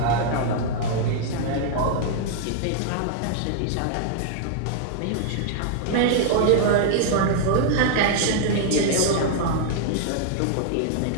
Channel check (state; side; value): different; both; correlation -0.01